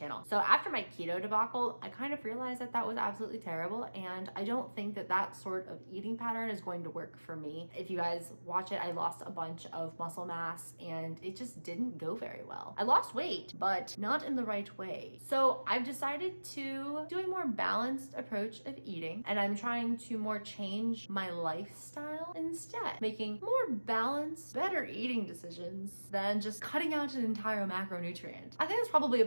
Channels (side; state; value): both; inverted; correlation -1.00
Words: So after my keto debacle, I kind of realized that that was absolutely terrible, and I don't think that that sort of eating pattern is going to work for me. If you guys watch it, I lost a bunch of muscle mass and it just didn't go very well. I lost weight, but not in the right way. So I've decided to do a more balanced approach of eating, and I'm trying to more change my lifestyle instead, making more balanced, better eating decisions than just cutting out an entire macronutrient. I think that's probably a